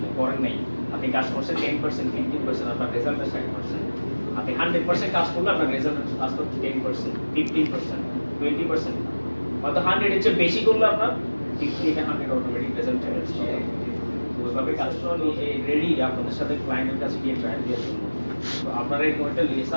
করেন নাই। আপনি কাজ করছেন 10%, 15%, আপনার রেজাল্ট আসছে 100%। আপনি 100% কাজ করলে আপনার রেজাল্ট আসতো 10%, 15%, 20%। হয়তো 100 এর চেয়ে বেশি করলে আপনার 50 থেকে 100 অটোমেটিক রেজাল্ট চলে আসছে। তো ওইভাবে কাজ করলে রেডি আপনাদের সাথে ক্লায়েন্টের কাছে গিয়ে ট্রায়াল দেওয়ার জন্য। তো আপনারা এরকম একটা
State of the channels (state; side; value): inverted; both; correlation -1.00